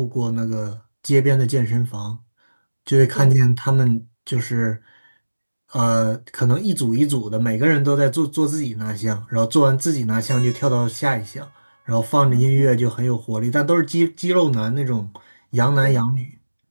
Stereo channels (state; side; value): inverted; both; correlation -1.00